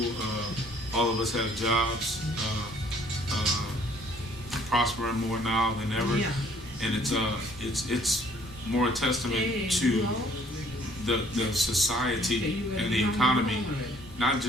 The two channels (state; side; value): normal; both; correlation 0.60